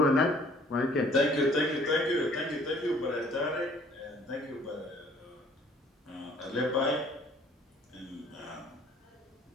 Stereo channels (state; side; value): normal; both; correlation 0.57